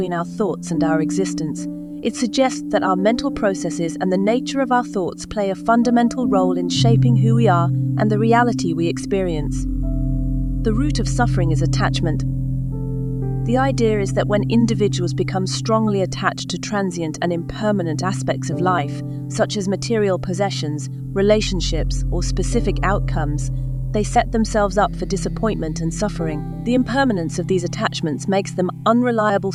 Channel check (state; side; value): identical; both; correlation 1.00